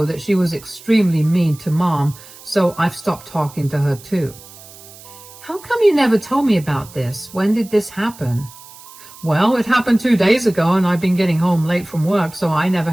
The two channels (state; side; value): noise; right; hiss, 20 dB below the sound